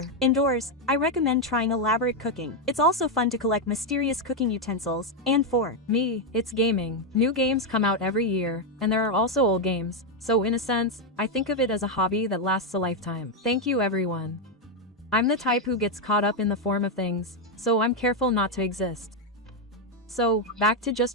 indoors, I recommend trying elaborate cooking. It's also fun to collect mysterious cooking utensils, and for me, it's gaming. New games come out every year, and there are also old games, so in a sense, I think of it as a hobby that lasts a lifetime. Thank you everyone. I'm the type who gets caught up in the form of things, so I'm careful not to exist. So, back to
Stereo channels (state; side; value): normal; both; correlation 0.03